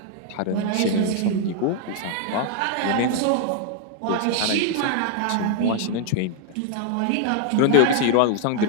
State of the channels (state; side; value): different; both; correlation 0.00